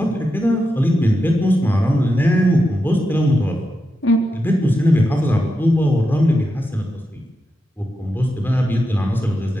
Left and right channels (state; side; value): normal; both; correlation 0.88